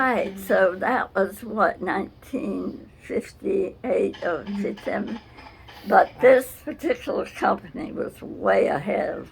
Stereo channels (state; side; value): identical; both; correlation 1.00